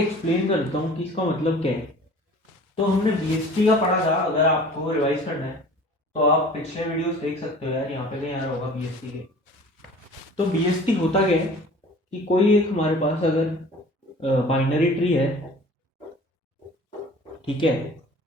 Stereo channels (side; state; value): both; normal; correlation 0.45